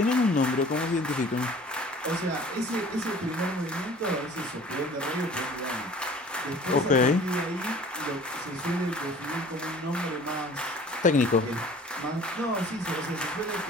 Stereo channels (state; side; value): normal; both; correlation 0.47